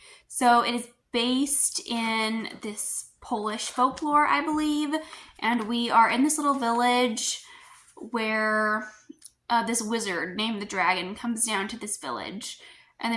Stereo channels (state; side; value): identical; both; correlation 1.00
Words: So it is based in this Polish folklore, I believe, and we are in this little village where this wizard named the Dragon comes down to this village, and